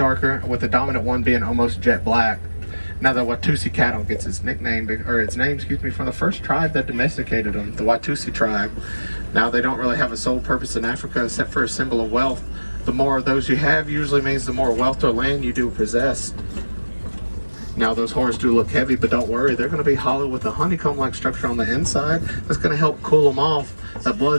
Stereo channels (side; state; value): both; inverted; correlation -1.00